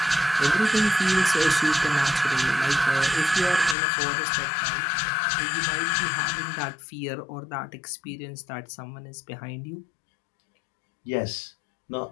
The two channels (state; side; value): drops out; right; at 3.8 s